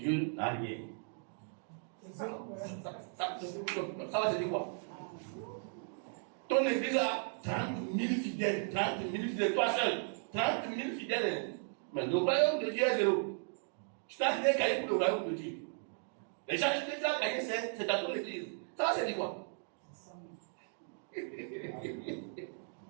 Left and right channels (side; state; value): left; silent; 54 dB below the other